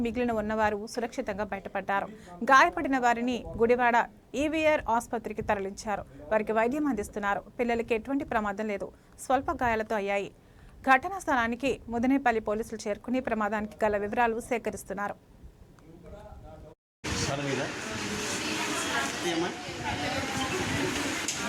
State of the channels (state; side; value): identical; both; correlation 1.00